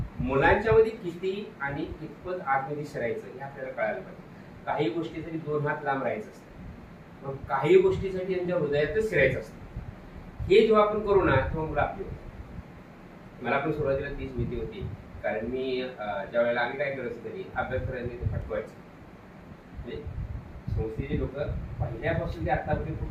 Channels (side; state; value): both; identical; correlation 1.00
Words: मुलांच्या मध्ये किती आणि कितपत आतमध्ये शिरायचं हे आपल्याला कळायला पाहिजे. काही गोष्टीसाठी 2 हात लांब राहायचं असतं, मग काही गोष्टीसाठी त्यांच्या हृदयातच शिरायचं असतं. हे जेव्हा आपण करू ना तेव्हा मुलं आपली होती. मला पण सुरुवातीला तीच भीती होती, कारण मी ज्या वेळेला आम्ही काय करायचं तरी अभ्यास करायचं ते फटवायचं. म्हणजे संस्थेची लोक पहिल्यापासून ते आतापर्यंत